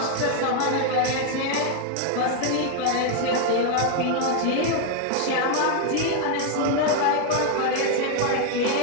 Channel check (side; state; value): both; different; correlation 0.00